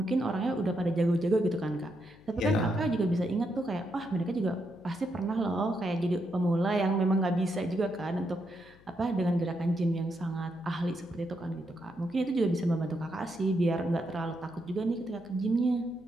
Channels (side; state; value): left; noise; hum, 26 dB below the sound